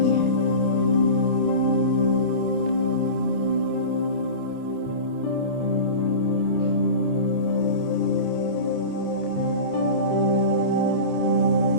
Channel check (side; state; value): right; late; 29 ms